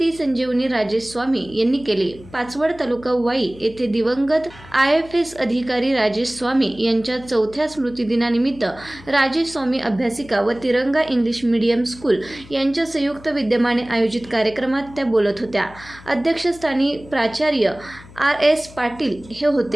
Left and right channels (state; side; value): noise; left; hum, 20 dB below the sound